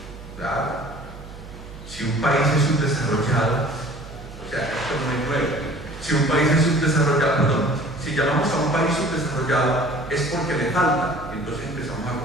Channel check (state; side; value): noise; right; hum, 15 dB below the sound